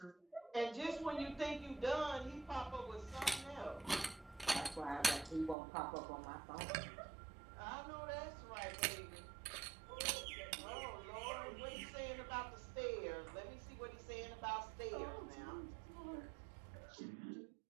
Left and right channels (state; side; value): drops out; left; at 5.6 s